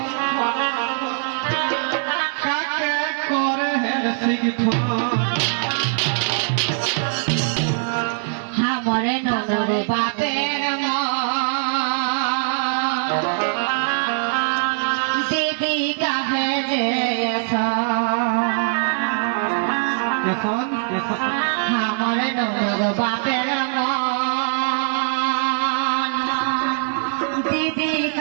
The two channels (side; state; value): left; silent; digital silence